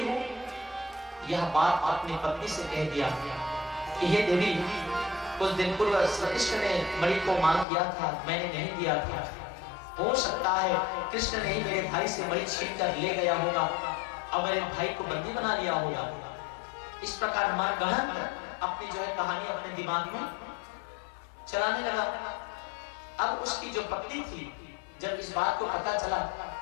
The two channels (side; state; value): right; drops out; at 7.7 s